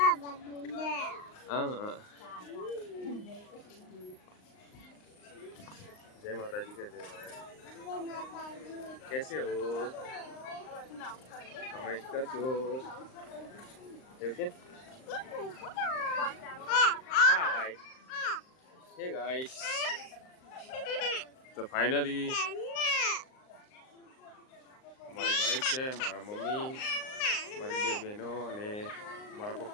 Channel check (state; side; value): late; right; 38 ms